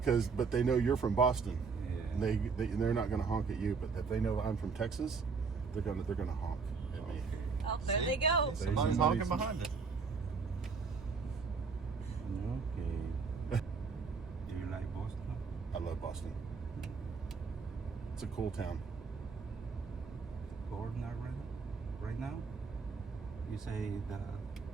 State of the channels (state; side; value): quieter; left; 5.0 dB